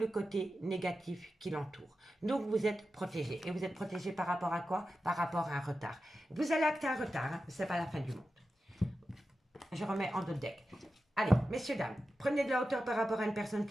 côté négatif qui l'entoure. Donc vous êtes protégé. Et vous êtes protégé par rapport à quoi? Par rapport à un retard. Vous allez acter un retard, hein? Ce n'est pas la fin du monde. Je remets en d'autres deck. Allez, messieurs, dames, prenez de la hauteur par rapport à une personne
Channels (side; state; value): both; normal; correlation 0.92